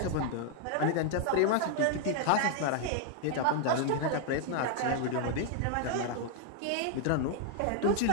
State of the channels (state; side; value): different; both; correlation 0.00